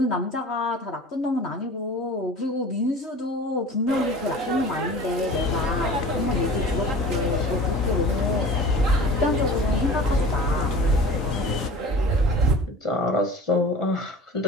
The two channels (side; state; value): both; normal; correlation 0.40